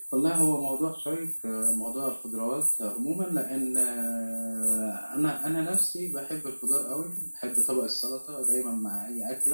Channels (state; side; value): inverted; both; correlation -1.00